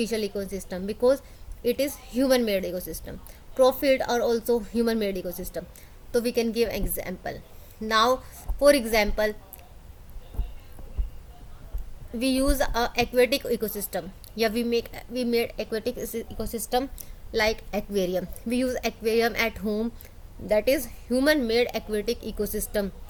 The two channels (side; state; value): both; identical; correlation 1.00